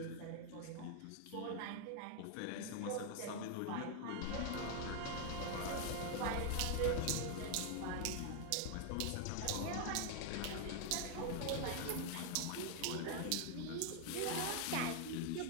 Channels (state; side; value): different; both; correlation 0.00